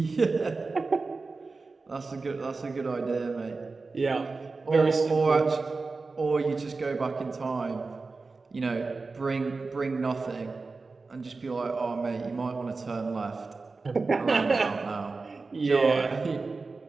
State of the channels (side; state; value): left; quieter; 4.0 dB